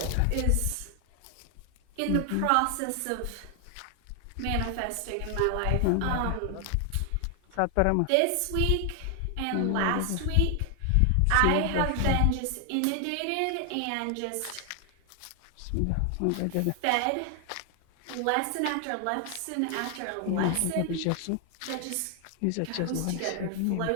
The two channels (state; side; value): different; both; correlation 0.00